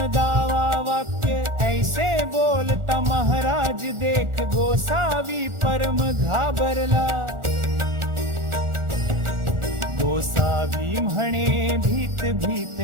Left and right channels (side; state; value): left; late; 1.4 ms